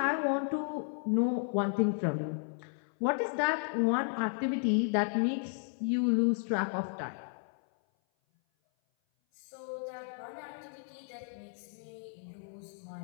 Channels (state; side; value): silent; right; 55 dB below the other